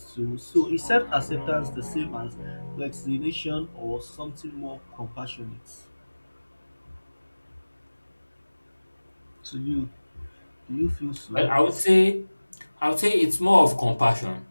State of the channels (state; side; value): inverted; both; correlation -1.00